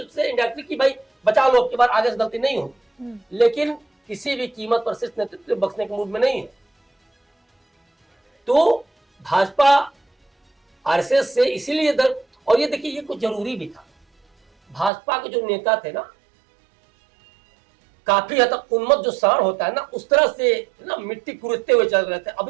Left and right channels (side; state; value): left; drops out; at 14.9 s